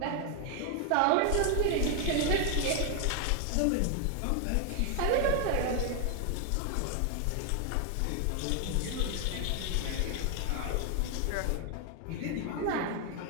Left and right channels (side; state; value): both; different; correlation 0.00